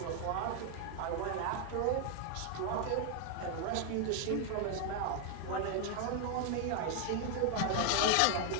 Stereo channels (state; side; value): different; both; correlation 0.00